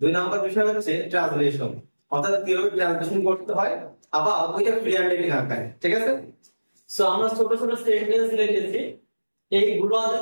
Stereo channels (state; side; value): inverted; both; correlation -1.00